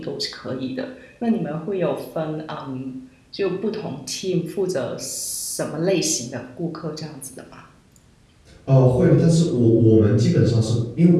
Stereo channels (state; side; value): identical; both; correlation 1.00